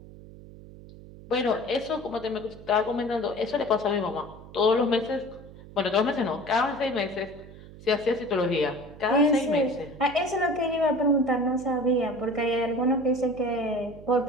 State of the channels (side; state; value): right; noise; hum, 18 dB below the sound